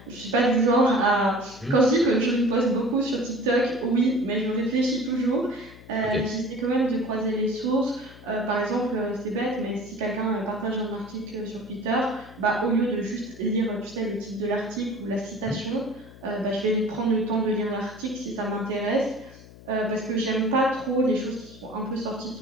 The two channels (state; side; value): noise; left; hum, 20 dB below the sound